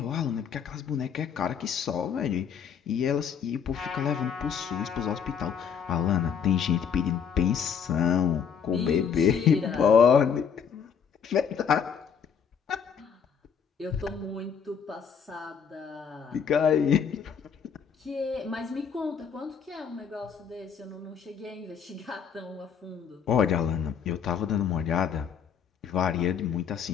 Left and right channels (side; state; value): right; quieter; 7.2 dB